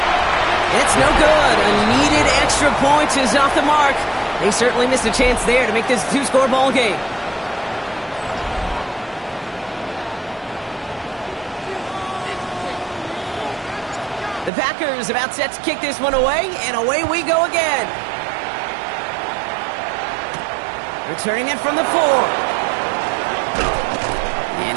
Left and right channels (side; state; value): left; drops out; at 14.5 s